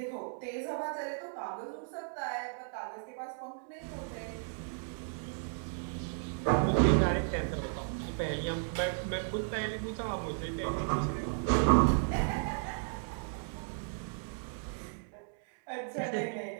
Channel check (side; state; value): left; silent; digital silence